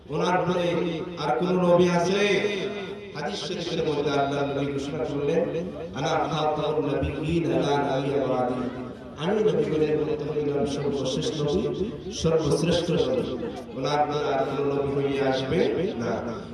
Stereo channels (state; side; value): identical; both; correlation 1.00